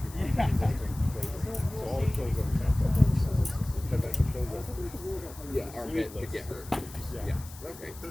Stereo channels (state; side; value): noise; left; hiss, 18 dB below the sound